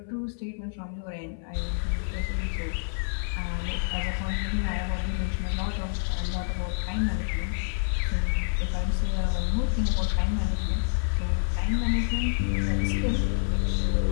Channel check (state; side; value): silent; right; 60 dB below the other